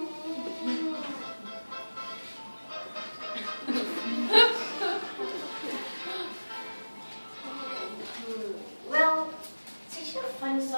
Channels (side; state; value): both; inverted; correlation -1.00